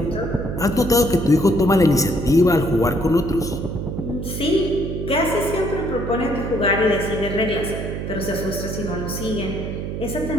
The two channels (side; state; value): right; noise; hum, 5 dB below the sound